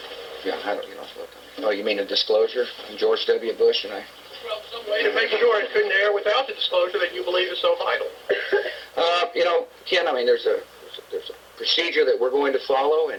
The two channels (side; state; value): both; identical; correlation 1.00